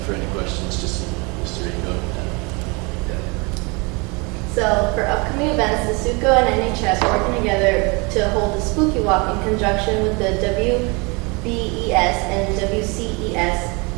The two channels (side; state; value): left; quieter; 29.0 dB